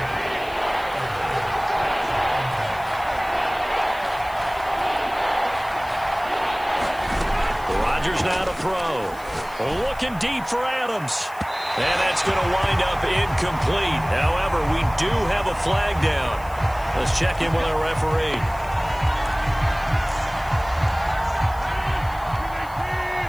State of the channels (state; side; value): noise; left; hiss, 22 dB below the sound